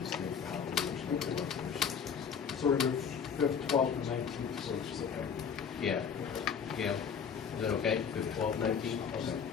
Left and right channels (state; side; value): quieter; right; 6.9 dB